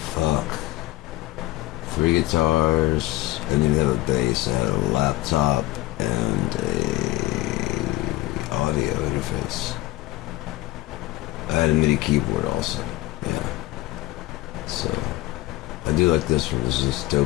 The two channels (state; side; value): quieter; right; 18.1 dB